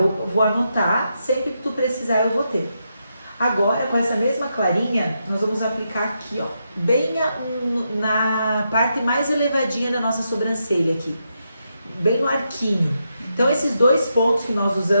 vou anotar, sempre que tu precisar eu vou ter. Agora, com essa mesma clarinha, nós vamos aplicar aqui, ó, bem na parte mais elevadinha da nossa sobrancelha aqui, bem no arquinho. Então, esses dois pontos que nós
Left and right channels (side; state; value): both; inverted; correlation -0.83